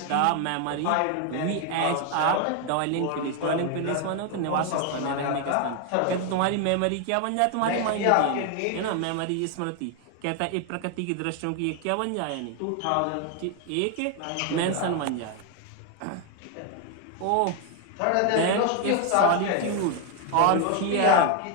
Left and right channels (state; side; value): different; both; correlation 0.01